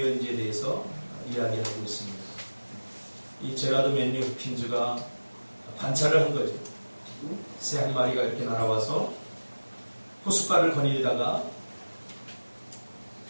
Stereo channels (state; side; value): inverted; both; correlation -1.00